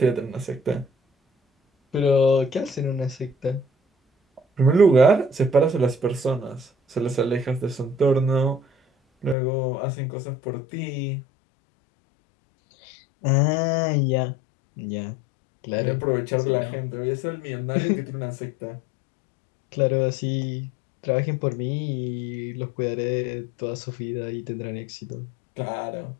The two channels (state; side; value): drops out; right; at 9.3 s